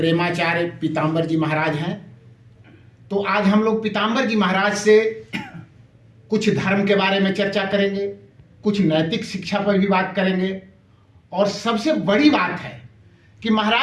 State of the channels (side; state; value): both; identical; correlation 1.00